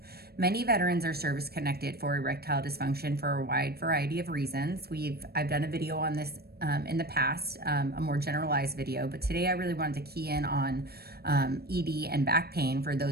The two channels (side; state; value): left; late; 0.46 ms